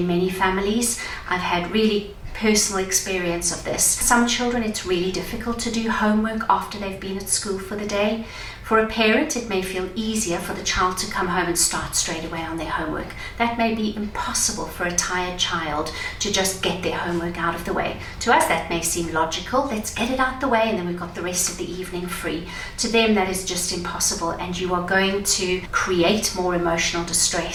many families. I've had really personal experience of this. Some children, it's really difficult to do homework after they've been at school for the day. For a parent, it may feel easier for the child to come home and start straight away on their homework. That may be impossible for a tired child to just get their homework out of the way. To us, that may seem logical. Let's get it out the way and then we've got the rest of the evening free. To them, that is just impossible, and you are going to create more emotional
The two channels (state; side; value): identical; both; correlation 1.00